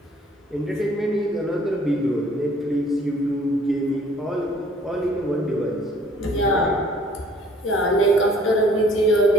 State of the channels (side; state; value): both; normal; correlation 0.56